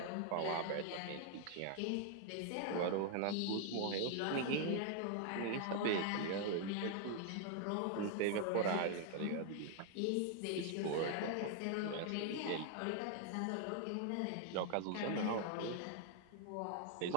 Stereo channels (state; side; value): different; both; correlation 0.00